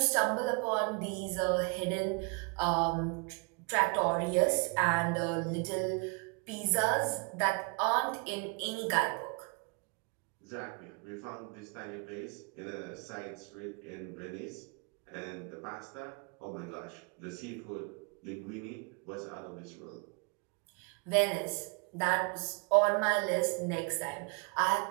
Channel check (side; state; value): left; quieter; 33.1 dB